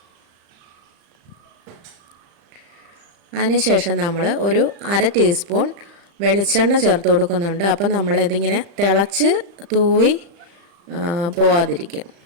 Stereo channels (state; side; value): late; left; 35 ms